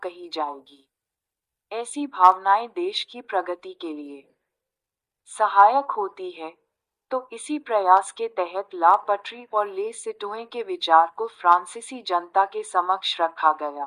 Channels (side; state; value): both; identical; correlation 1.00